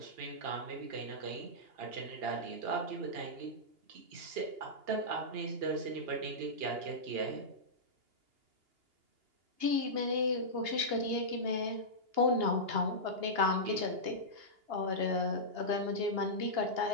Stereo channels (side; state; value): left; late; 2.8 ms